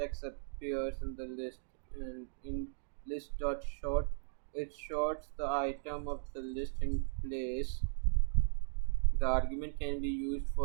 x appears in the list, and in list.sort it sorts the item of the list in place. The argument can be used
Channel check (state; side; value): silent; left; digital silence